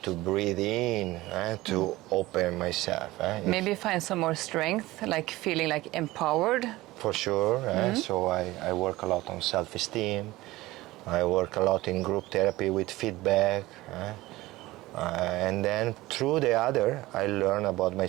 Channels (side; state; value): left; quieter; 18.4 dB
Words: to breathe in to open myself. Maybe find some more strength, like feeling like empowered. For sure. So I work a lot on self-esteem. I work a lot in group therapy with feedback. And then through the other, I learn about